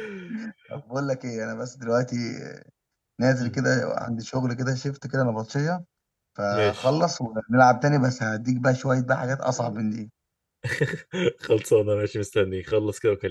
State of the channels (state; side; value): identical; both; correlation 1.00